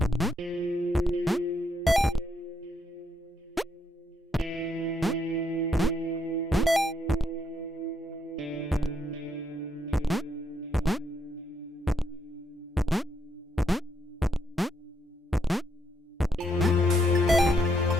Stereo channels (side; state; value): both; normal; correlation 0.75